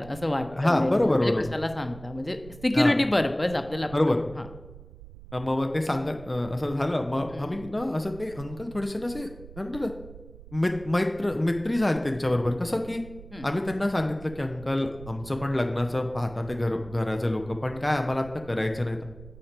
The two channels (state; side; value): noise; right; rumble, 17 dB below the sound